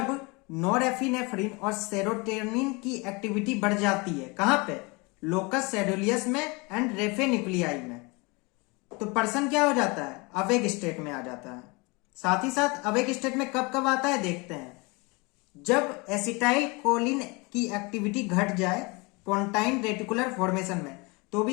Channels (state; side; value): quieter; right; 27.5 dB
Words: नॉरएपिनेफ्रिन और सेरोटोनिन की एक्टिविटी बढ़ जाती है, कहां पे? लोकस सेडुलियस में एंड रेफे न्यूक्लियाई में, तो पर्सन क्या हो जाता है? अवेक स्टेट में आ जाता है। साथ ही साथ अवेक स्टेट में कब कब आता है देखते हैं। जब एसिटाइल कोलिन की एक्टिविटी घट जाए पोंटाइन रेटिकुलर फॉर्मेशन में, तो